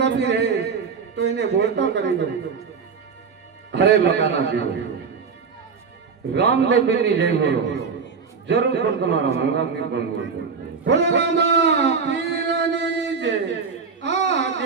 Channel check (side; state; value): left; quieter; 5.5 dB